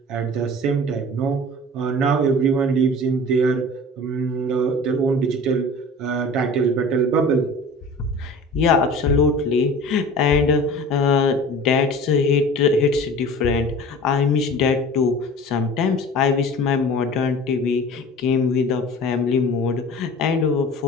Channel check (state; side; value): normal; both; correlation 0.41